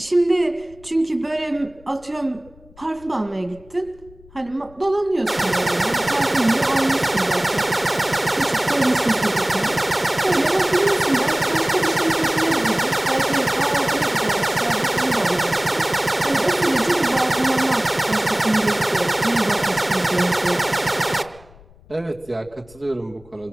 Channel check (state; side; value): noise; left; rumble, 25 dB below the sound